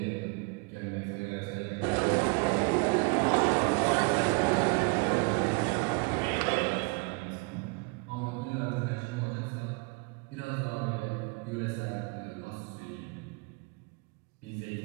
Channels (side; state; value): left; quieter; 31.0 dB